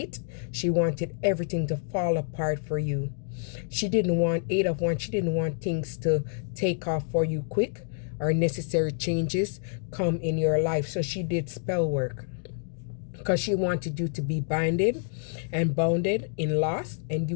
she wanted everything to fall apart for you. She didn't want 8 of Wands. She didn't want things to take off for you quick, or necessary changes come in your life. So she did spell work because she wanted you to be binded and bounded in loss, and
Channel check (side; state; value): right; silent; digital silence